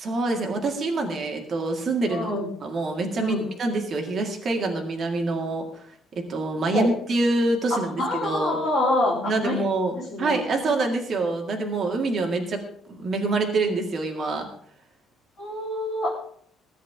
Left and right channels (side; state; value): both; normal; correlation 0.70